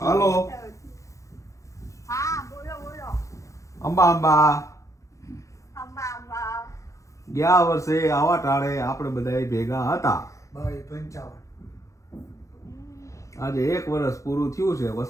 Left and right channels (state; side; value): late; right; 0.15 ms